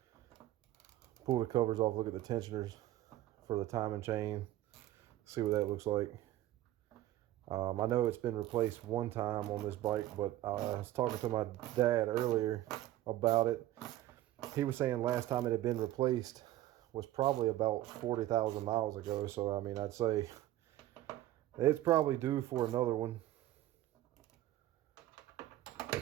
pull the covers off, look at the tensioners for the timing chain, see what that looks like. I know it's been replaced one time on this bike, but I was talking to my dad earlier about it. He was saying last time it had been replaced was probably about 40,000 miles ago. So, I mean, I'd say it's probably due for another one.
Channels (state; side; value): quieter; left; 14.5 dB